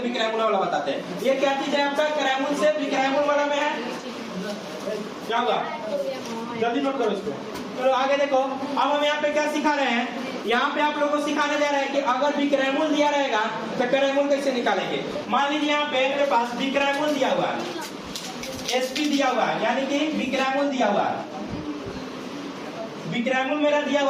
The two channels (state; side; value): identical; both; correlation 1.00